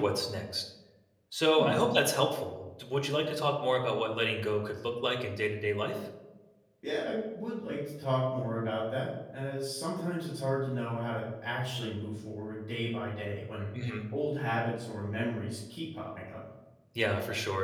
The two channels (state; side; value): identical; both; correlation 1.00